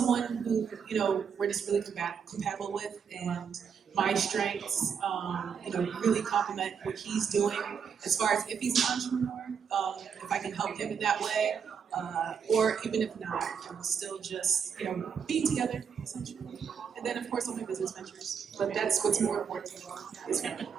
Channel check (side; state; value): left; quieter; 6.9 dB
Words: who, you know, we're just really compatible with, and my strengths, you know, really complement what he's doing as far as if he's an entrepreneur, if I can help him in that way, or even if not, still just, you know, being together, essentially. And then, of course, all my business ventures. But that's what's more important to me, is family.